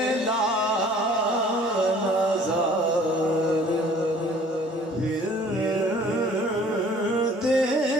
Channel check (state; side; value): normal; both; correlation 0.53